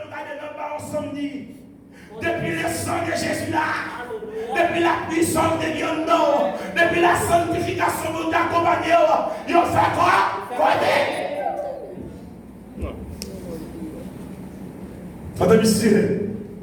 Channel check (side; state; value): both; identical; correlation 1.00